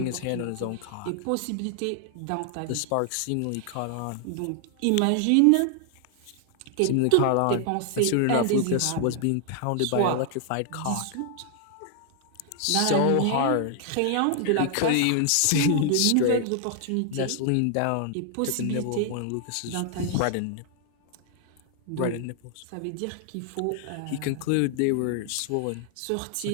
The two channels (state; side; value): different; both; correlation 0.00